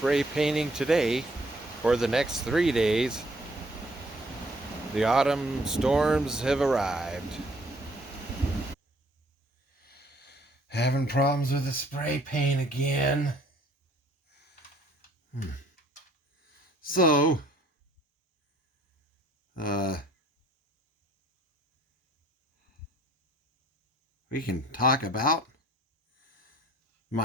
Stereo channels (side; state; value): both; normal; correlation 0.61